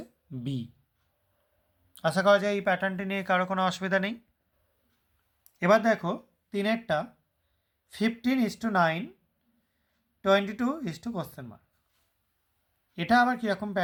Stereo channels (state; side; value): identical; both; correlation 1.00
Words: বি। আশা করা যায় এই প্যাটার্নটি নিয়ে কারো কোনো অসুবিধা নেই। এবার দেখো 3এরটা, 15:9, 22 কোশ্চেন মার্ক। এটা আবার কীরকম